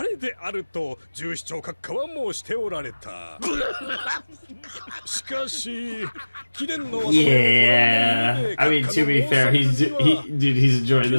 れであると従司長閣下は申しておられた。しかし、貴殿の Yeah, I mean, to be fair, he's enjoying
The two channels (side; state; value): both; inverted; correlation -1.00